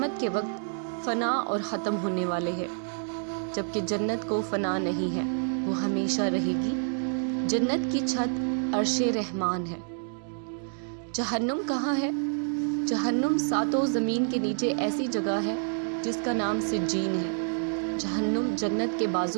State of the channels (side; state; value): left; silent; 59 dB below the other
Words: کے وقت فنا اور ختم ہونے والے ہیں، جبکہ جنت کو فنا نہیں ہے، وہ ہمیشہ رہے گی۔ جنت کی چھت عرش رحمان ہے۔ جہنم کہاں ہے؟ جہنم ساتوں زمین کے نیچے ایسی جگہ ہے جس کا نام سجین ہے۔ جہنم جنت کے